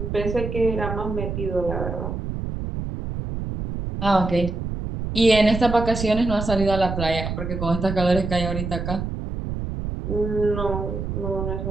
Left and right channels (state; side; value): noise; right; rumble, 5 dB below the sound